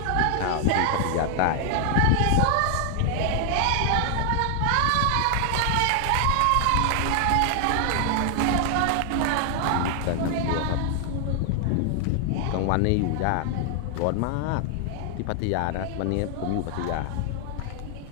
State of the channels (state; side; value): different; both; correlation 0.00